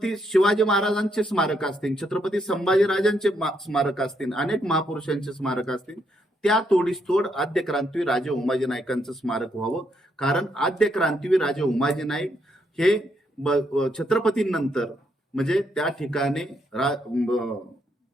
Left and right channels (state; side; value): normal; both; correlation 0.76